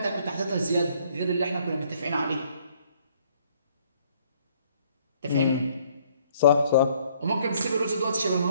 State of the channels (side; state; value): both; inverted; correlation -0.64